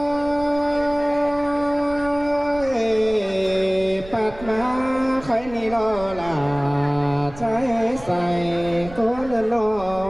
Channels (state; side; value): noise; right; rumble, 16 dB below the sound